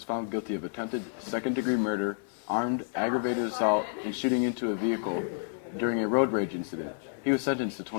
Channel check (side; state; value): right; silent; digital silence